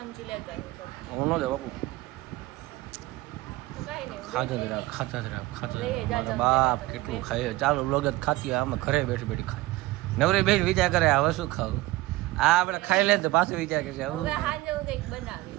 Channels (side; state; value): left; quieter; 18.9 dB